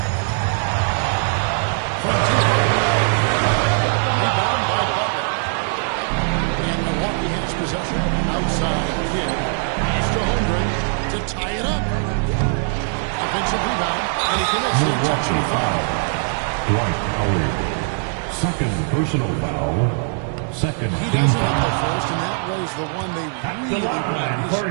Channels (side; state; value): left; silent; 56 dB below the other